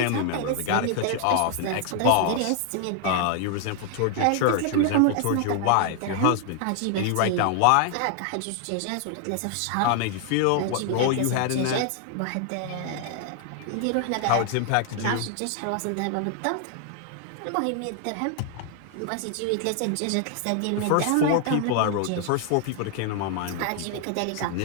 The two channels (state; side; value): different; both; correlation 0.00